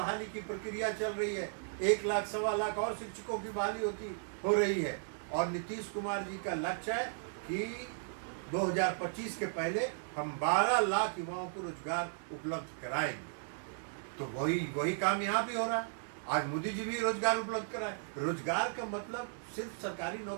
की प्रक्रिया चल रही है। 1 लाख 1.25 लाख और शिक्षकों की बहाली हो रही है। और नीतीश कुमार जी का लक्ष्य है कि 2025 के पहले हम 12 लाख युवाओं को रोजगार उपलब्ध कराएंगे। तो वही काम यहाँ भी हो रहा है। आज मोदी जी भी रोजगार उपलब्ध कराए। रोजगार का मतलब सिर्फ सरकारी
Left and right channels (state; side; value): silent; left; digital silence